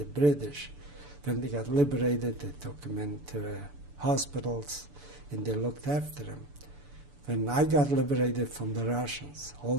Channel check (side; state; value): left; late; 6.9 ms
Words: British. When they got liberated, they took them into hospitals and they looked after them. When I got liberated from the Russians, all